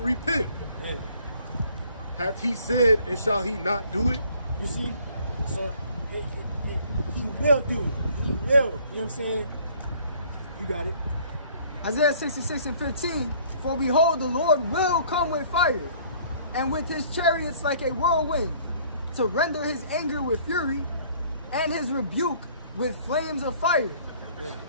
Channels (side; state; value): both; inverted; correlation -0.57